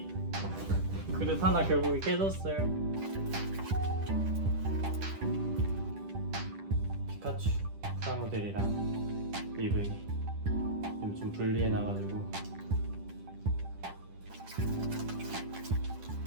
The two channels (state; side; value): late; left; 10 ms